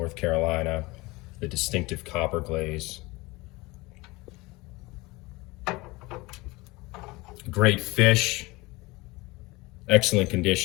Carolina. The distinctive copper glaze. Great fish, excellent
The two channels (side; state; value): right; quieter; 22.6 dB